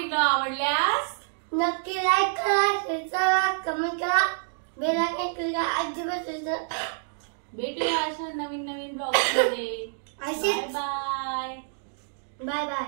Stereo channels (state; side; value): silent; left; digital silence